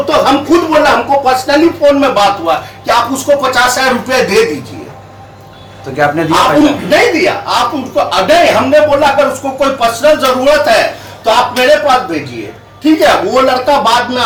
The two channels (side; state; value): both; identical; correlation 1.00